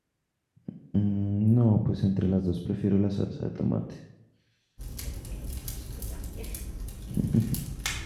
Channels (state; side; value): identical; both; correlation 1.00